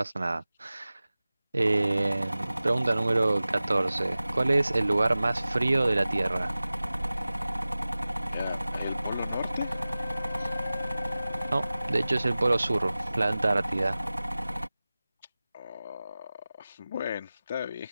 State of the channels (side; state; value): both; inverted; correlation -0.97